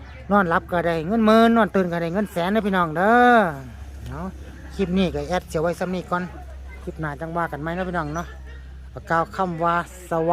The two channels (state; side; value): identical; both; correlation 1.00